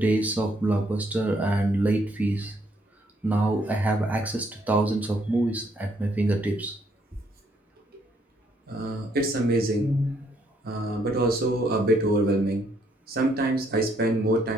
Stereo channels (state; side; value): normal; both; correlation 0.70